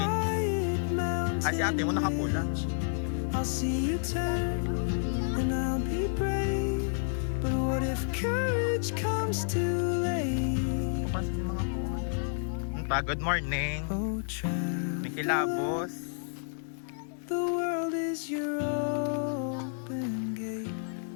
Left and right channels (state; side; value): silent; right; digital silence